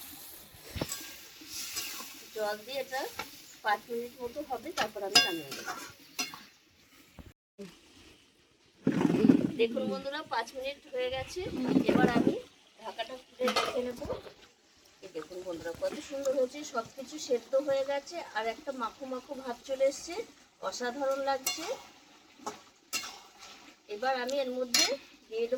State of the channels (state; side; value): identical; both; correlation 1.00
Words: জল দিয়ে এটা 5 মিনিট মতো হবে, তারপর আমি নামিয়ে নেব। দেখুন বন্ধুরা 5 মিনিট হয়ে গেছে। এবার আমি ঢাকাটা খুলে রেখে নেব। দেখুন বন্ধুরা কত সুন্দর হয়েছে, সব কিছু সেদ্ধ হয়ে গেছে আর একটা মাখো মাখো ভাব চলে এসছে, অসাধারণ লাগছে। এবার আমি এর মধ্যে দিয়ে